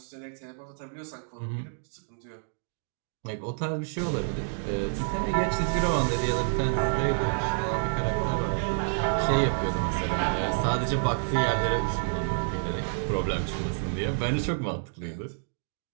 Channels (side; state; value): left; silent; digital silence